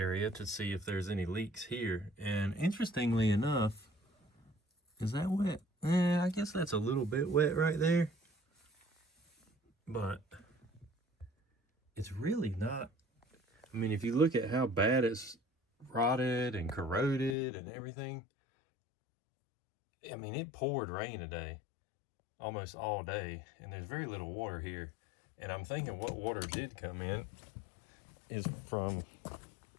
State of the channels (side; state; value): right; drops out; at 17.4 s